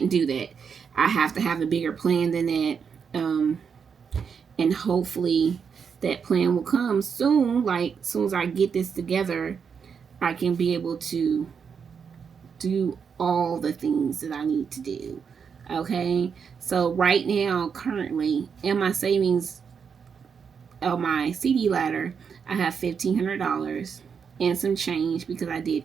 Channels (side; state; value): left; quieter; 6.5 dB